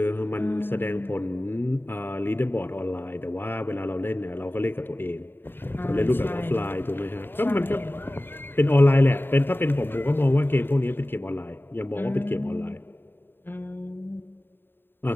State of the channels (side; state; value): right; late; 0.099 ms